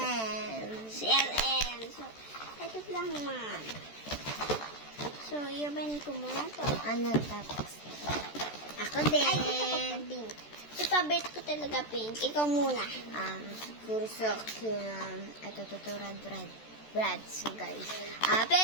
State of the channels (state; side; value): late; right; 14 ms